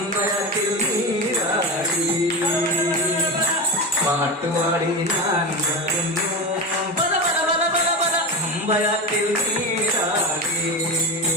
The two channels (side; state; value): both; normal; correlation 0.22